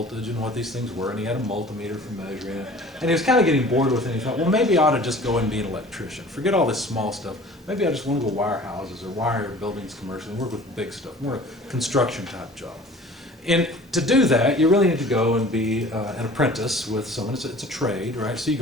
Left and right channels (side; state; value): both; normal; correlation 0.46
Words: and what these things were, and he had a multimeter for measuring it. And he was kind of getting bored with it, and he thought, well, maybe I ought to just go and be an electrician. Forget all this small stuff. Maybe I just want to go wire houses or wire buildings commercially and work with big stuff, more a construction type job. And to do that, you really need to go and be an apprentice with someone. It's a trade, right? So you